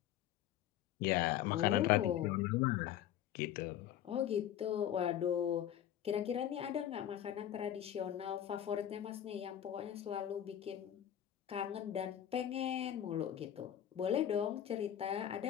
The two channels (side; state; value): right; quieter; 10.9 dB